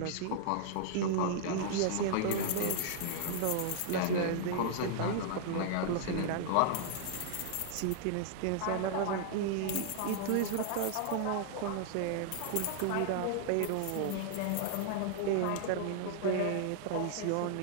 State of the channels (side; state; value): both; different; correlation -0.01